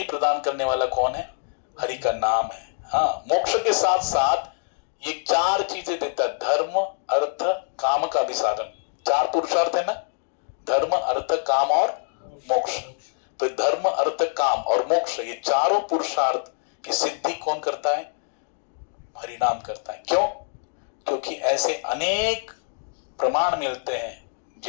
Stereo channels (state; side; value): silent; right; digital silence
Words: प्रदान करने वाला कौन है? हरि का नाम है। हाँ, मोक्ष के साथ साथ ये चार चीजें देता है, धर्म अर्थ काम का भी साधन। चार पुरुषार्थ है ना, धर्म अर्थ काम और मोक्ष। तो धर्म अर्थ काम और मोक्ष, ये चारों पुरुषार्थ की सिद्धि कौन करता है? हरिनाम करता है। क्यों? क्योंकि ऐसे अनेक प्रमाण मिलते हैं